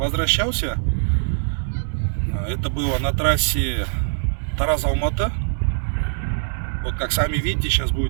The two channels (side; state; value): left; silent; digital silence